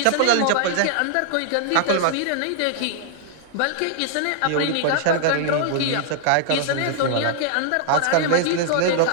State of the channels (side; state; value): both; different; correlation -0.01